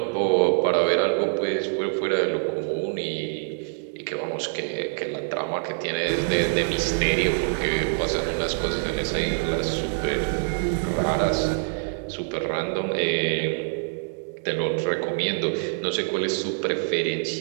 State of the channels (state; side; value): silent; left; digital silence